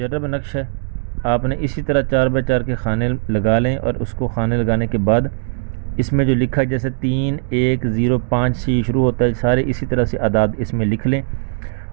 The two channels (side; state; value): left; silent; digital silence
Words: نقش ہے۔ آپ نے اسی طرح 4x4 کے خانے لگا لیں، اور اس کو خانے لگانے کے بعد اس میں جو لکھا ہے جیسے 3 1 0 5 سے شروع ہوتا ہے، سارے اسی طرح سے اعداد اس میں لکھ لیں،